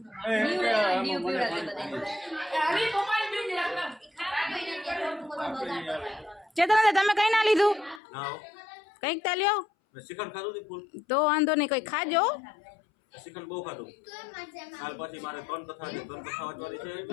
ચેતન તમે કઈ ના લીધું ના હો. કઈક તા લ્યો મેં શ્રીખંડ ખાધું હતું ફૂલ. તો વાંધો નહીં કઈ ખાજો શ્રીખંડ બહુ ખાધું. કાલ પછી મારે 3 કથા છે. 3 કથા વાંચવાની છે.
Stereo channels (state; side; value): drops out; right; at 8.0 s